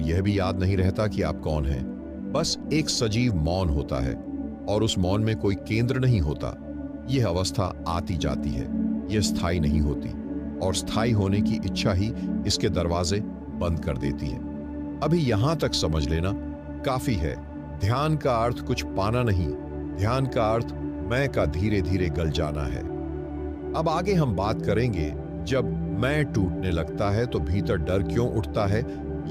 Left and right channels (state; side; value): identical; both; correlation 1.00